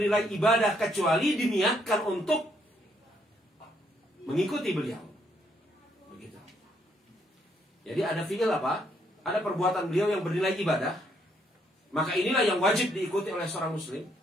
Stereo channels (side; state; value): both; normal; correlation 0.72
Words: ibadah kecuali diniatkan untuk mengikuti beliau. Begitu. Jadi ada fi'il apa? Ada perbuatan beliau yang bernilai ibadah, maka inilah yang wajib diikuti oleh seorang muslim.